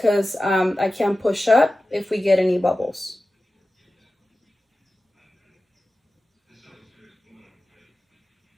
I can't push up if we get any bubbles.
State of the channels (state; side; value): normal; both; correlation 0.95